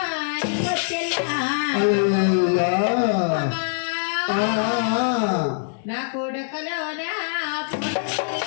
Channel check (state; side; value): silent; right; digital silence